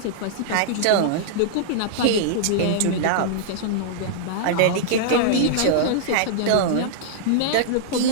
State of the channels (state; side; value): different; both; correlation -0.02